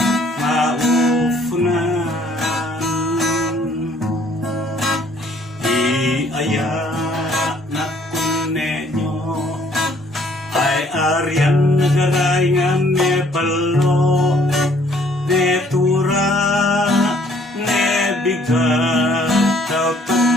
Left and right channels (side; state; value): both; normal; correlation 0.62